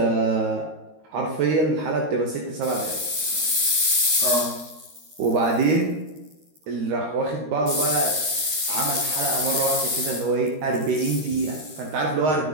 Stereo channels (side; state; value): left; late; 13 ms